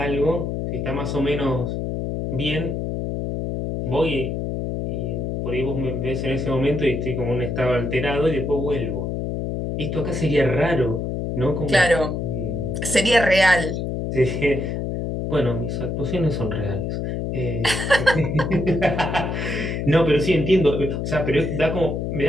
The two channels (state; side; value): noise; left; hum, 2 dB below the sound